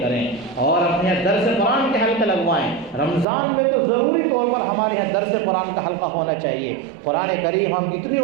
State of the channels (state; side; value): drops out; left; at 3.2 s